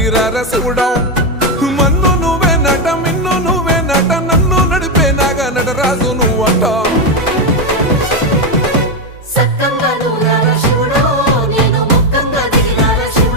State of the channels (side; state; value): both; normal; correlation 0.07